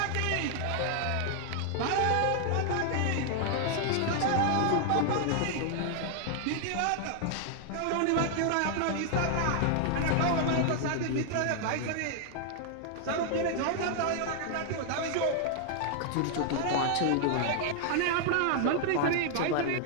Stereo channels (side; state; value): both; different; correlation 0.00